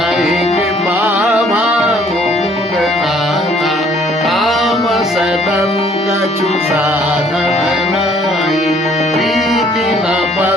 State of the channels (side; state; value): both; normal; correlation 0.60